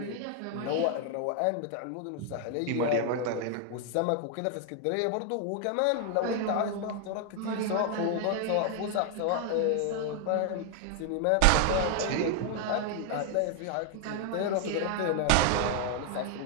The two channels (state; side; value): different; both; correlation 0.00